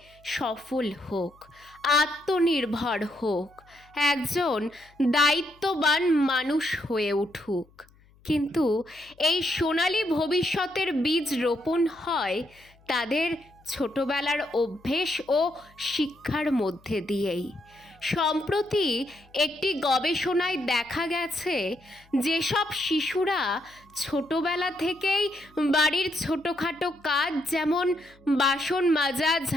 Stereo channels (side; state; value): left; noise; hum, 29 dB below the sound